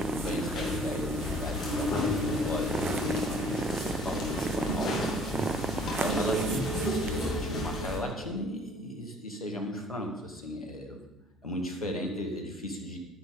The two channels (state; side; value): normal; both; correlation 0.53